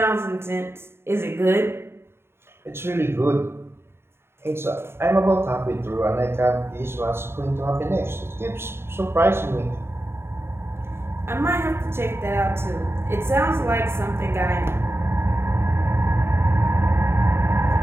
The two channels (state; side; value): late; left; 0.12 ms